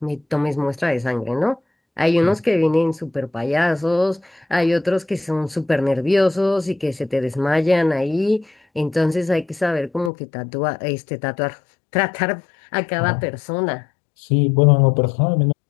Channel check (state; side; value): drops out; right; at 10.1 s